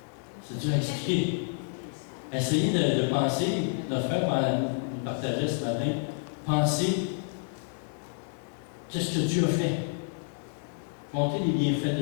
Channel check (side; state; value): right; silent; digital silence